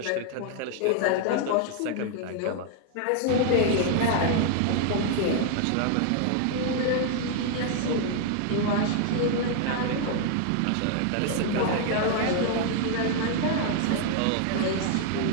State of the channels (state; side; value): different; both; correlation 0.00